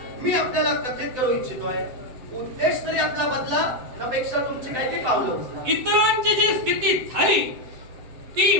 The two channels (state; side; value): late; left; 7.9 ms